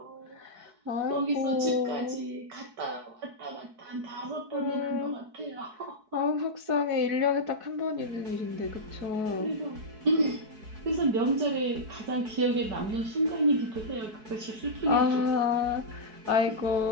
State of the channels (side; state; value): left; late; 4.6 ms